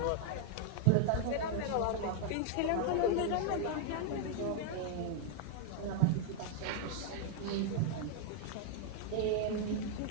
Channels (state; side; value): different; both; correlation 0.00